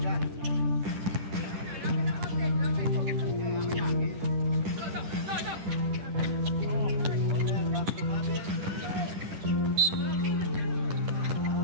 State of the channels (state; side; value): late; left; 10 ms